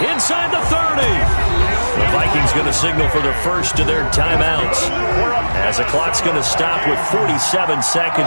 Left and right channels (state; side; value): inverted; both; correlation -1.00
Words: inside the 30. The Vikings going to signal for the first of their timeouts, as the clock's going to stop with 47